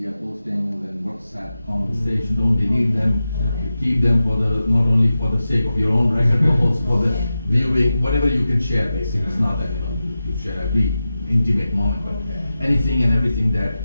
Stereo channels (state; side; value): inverted; both; correlation -0.92